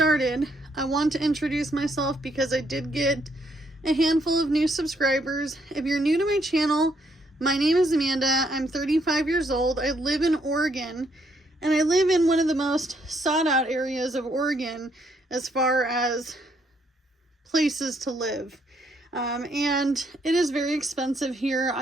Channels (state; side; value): normal; both; correlation 0.72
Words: I want to introduce myself because I did get a handful of new subscribers. If you're new to my channel, my name is Amanda. I'm 35 years old. I live in Oregon, and I live in one of the most sought out areas of Oregon as far as places to live. And it is very expensive here.